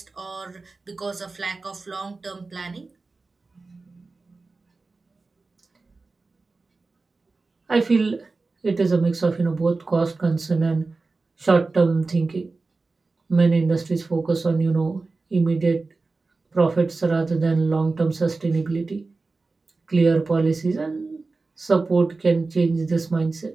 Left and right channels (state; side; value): quieter; left; 3.7 dB